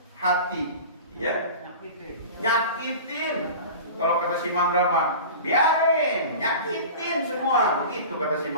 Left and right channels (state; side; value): inverted; both; correlation -0.36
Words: hati, ya, nyakitin. Kalau kata si Mandra mah, biarin, nyakitin semua, begitu kata si